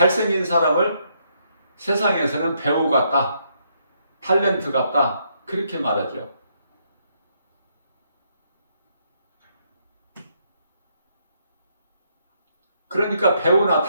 사람을 세상에서는 배우 같다, 탤런트 같다, 그렇게 말하죠. 그러니까 배우나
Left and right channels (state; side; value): inverted; both; correlation -0.74